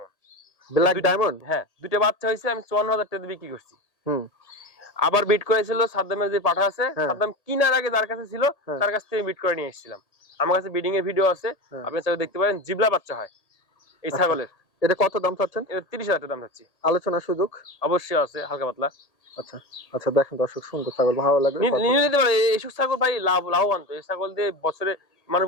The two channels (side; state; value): right; late; 1.8 ms